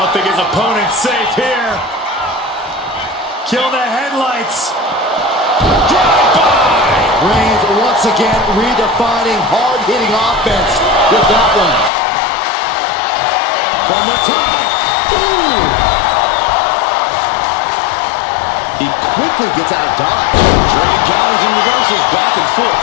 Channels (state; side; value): drops out; right; at 11.9 s